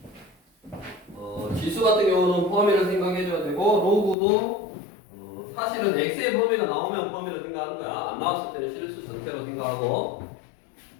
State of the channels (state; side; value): drops out; right; at 4.2 s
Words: 지수 같은 경우는 범위를 생각해줘야 되고, 로그도 사실은 x의 범위가 나오면 범위를 생각하는 거야. 안 나왔을 때는 실수 전체로 생각하고,